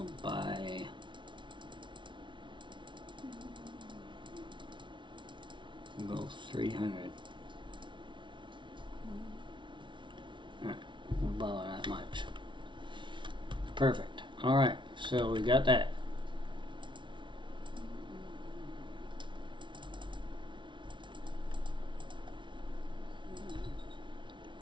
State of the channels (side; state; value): left; late; 0.24 ms